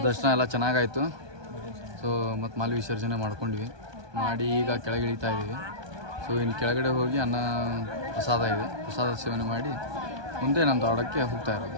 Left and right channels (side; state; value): left; late; 1.2 ms